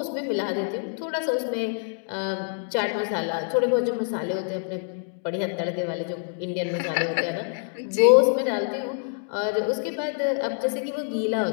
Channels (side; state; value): right; silent; 61 dB below the other